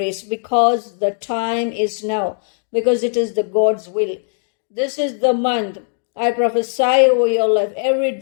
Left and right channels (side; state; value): right; silent; digital silence